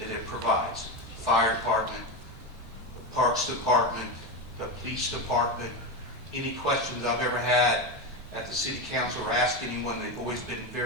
it provides. Fire department, the parks department, the police department. Any questions I've ever had at the city council or asked anyone, they've always been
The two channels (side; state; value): both; normal; correlation 0.15